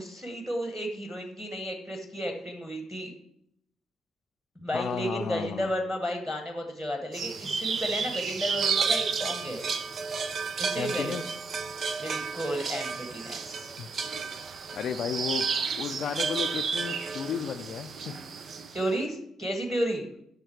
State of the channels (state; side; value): normal; both; correlation 0.78